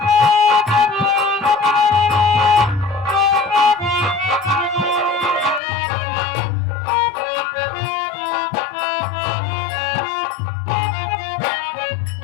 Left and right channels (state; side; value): drops out; right; at 5.6 s